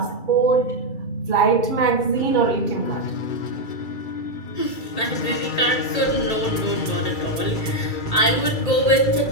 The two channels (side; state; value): right; late; 2.3 ms